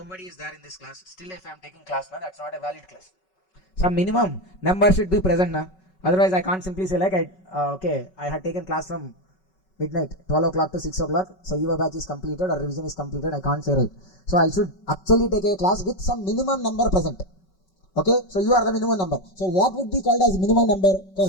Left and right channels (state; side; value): late; right; 5.3 ms